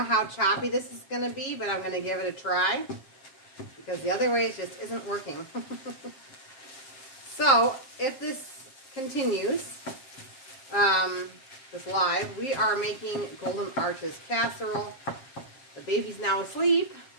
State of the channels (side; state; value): right; late; 7.4 ms